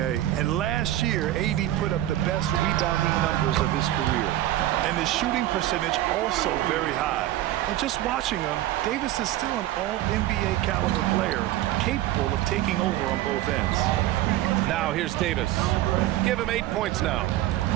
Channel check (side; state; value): left; quieter; 14.4 dB